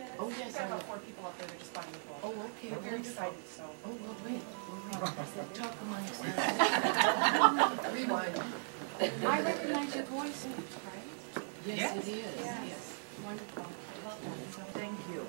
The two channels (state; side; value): silent; left; digital silence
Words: Oh, yes. We've got about 4 people up there that are just buying the book. Oh, okay. We're very excited, so. Oh, well, wait. Talk among yourselves. Rewind. I recognize your voice, right? Yes, it is. Yes. Yes. Wonderful. I love that. Thank you.